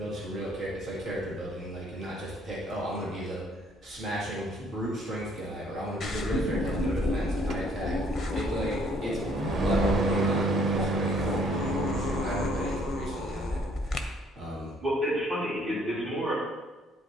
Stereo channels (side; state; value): both; normal; correlation 0.63